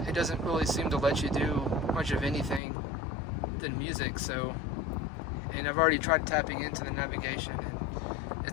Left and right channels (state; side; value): drops out; right; at 2.6 s